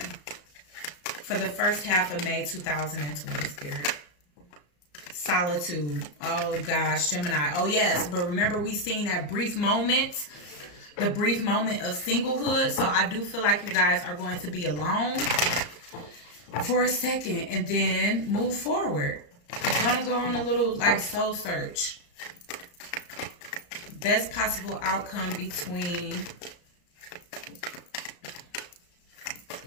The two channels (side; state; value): right; late; 34 ms